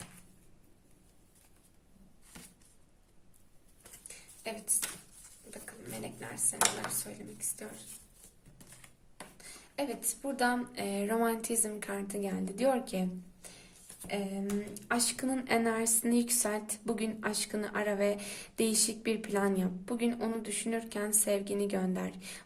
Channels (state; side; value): identical; both; correlation 1.00